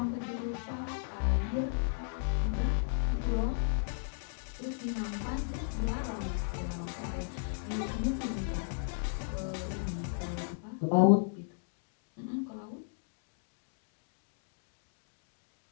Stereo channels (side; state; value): right; silent; digital silence